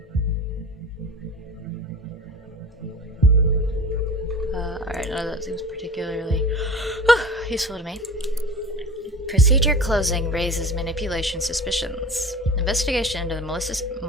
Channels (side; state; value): both; normal; correlation 0.37